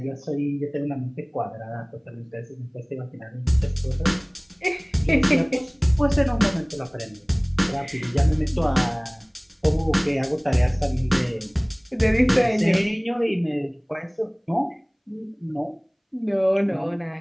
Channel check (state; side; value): identical; both; correlation 1.00